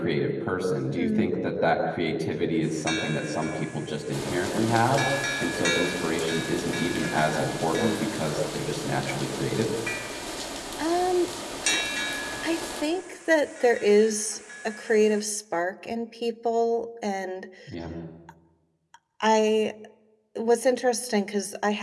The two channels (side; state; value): both; identical; correlation 1.00